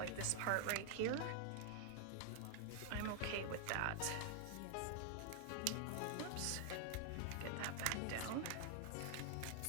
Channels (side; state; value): both; different; correlation 0.00